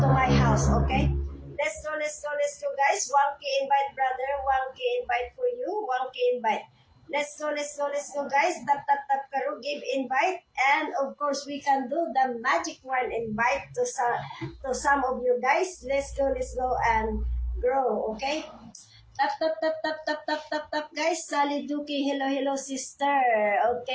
house, okay? Let's go, guys. 1K invite, brother. 1K invite for you. 1K invite. Let's go, guys. Tap, Karo, give invite. And of course, we can do the magic one invite to some of you guys. Let's go and grow, okay? Tap, guys. Sally Duki, hello, sister.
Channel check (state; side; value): identical; both; correlation 1.00